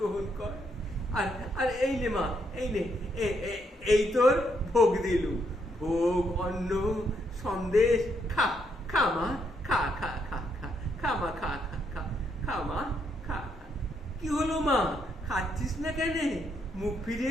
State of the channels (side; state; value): both; normal; correlation 0.75